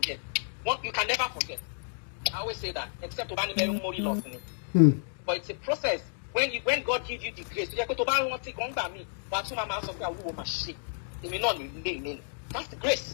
You can never forget. I always say that, except to loss in it. But it's a process. When God gives you the grace, that's the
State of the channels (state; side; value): silent; right; 57 dB below the other